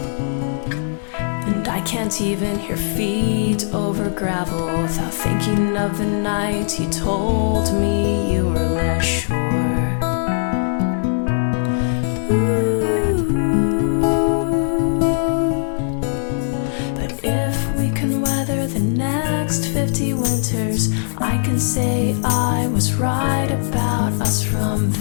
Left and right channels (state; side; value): silent; right; digital silence